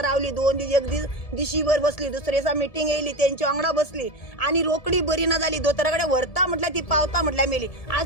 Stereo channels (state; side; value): late; right; 1.7 ms